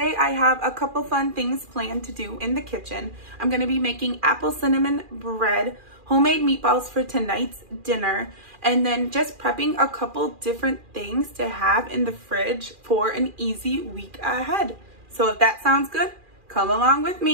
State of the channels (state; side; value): late; left; 2.4 ms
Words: I have a couple fun things planned to do in the kitchen. I'm going to be making apple cinnamon bread, homemade meatballs for tonight's dinner, and then just prepping a couple different things to have in the fridge for an easy week ahead. So if that sounds good, come along with